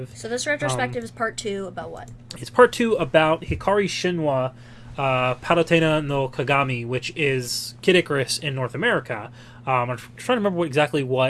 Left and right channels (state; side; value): identical; both; correlation 1.00